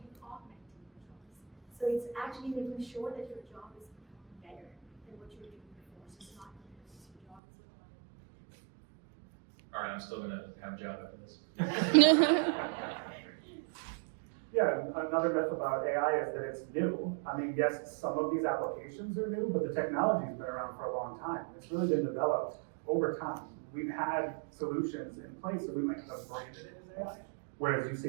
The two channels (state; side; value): drops out; left; at 7.4 s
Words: augmenting your jobs. So it's actually making sure that your job is better than what you were doing before. So it's not replacing your job as well. All right, I'm still going to have a job after this. Yeah, another myth about AI is that it's new. I mean, yes, some of these applications are new, but the technology's been around for a long time. It's really been developed over time. We've had solutions in place that we might have branded it as AI, whereas you